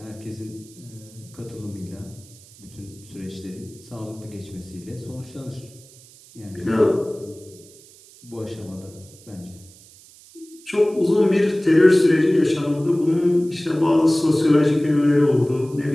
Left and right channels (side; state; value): right; noise; hiss, 23 dB below the sound